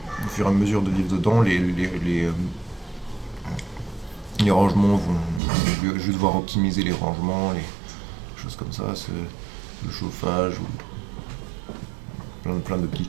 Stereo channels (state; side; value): drops out; left; at 5.4 s